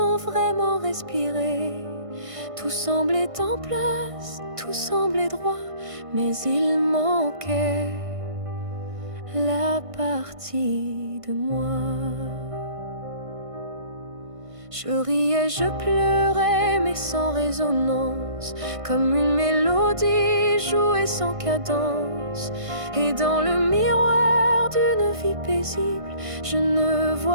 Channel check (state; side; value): late; left; 1.6 ms